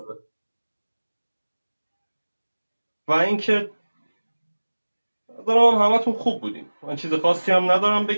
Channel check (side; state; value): both; inverted; correlation -1.00